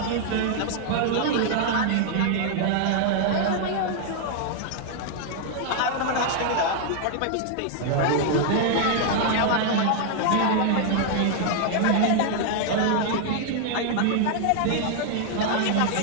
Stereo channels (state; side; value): different; both; correlation 0.00